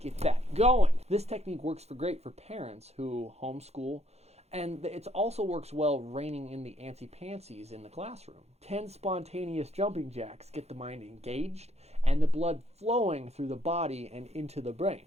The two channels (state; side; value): late; left; 0.31 ms